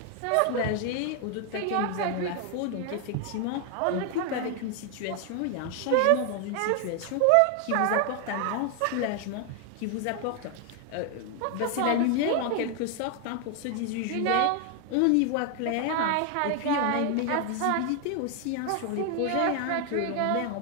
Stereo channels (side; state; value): both; different; correlation 0.00